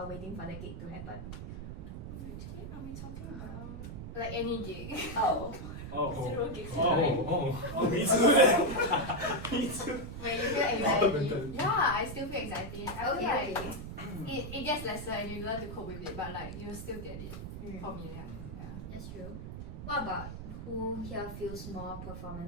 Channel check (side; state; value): right; noise; rumble, 8 dB below the sound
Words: waiting for the gig to happen? Which gig are we talking about? Like any gig. Oh. 0 gigs. Oh, me too. Me too. Where you feel anxiety? Yeah, I still feel anxiety. I feel Okay. like it gets lesser and you learn to cope with it, but like you still get it. For me, yeah. That's true. What about who here feels more